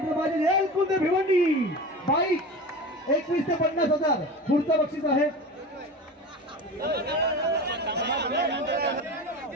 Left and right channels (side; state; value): both; normal; correlation 0.31